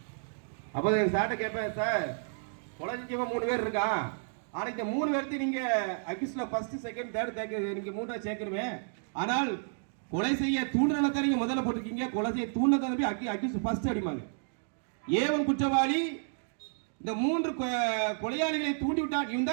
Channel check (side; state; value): left; silent; digital silence